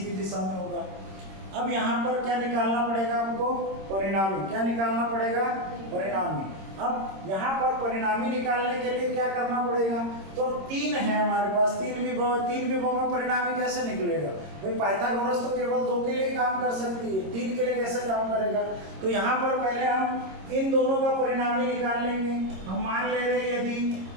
की दिशा में होगा। अब यहाँ पर क्या निकालना पड़ेगा हमको, परिणामी। क्या निकालना पड़ेगा, परिणामी। अब यहाँ पर परिणामी निकालने के लिए क्या करना पड़ेगा, तो 3 है हमारे पास, 3 विभव, 3 विभव में परिणामी कैसे निकलेगा भाई। पाइथागोरस तो केवल 2 के लिए काम कर सकती है, 3 के लिए कैसे काम करेगा। तो यहाँ पर पहले हम इन दोनों का परिणामी निकाल लेंगे। हम मान ले रहे हैं यदि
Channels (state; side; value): late; left; 26 ms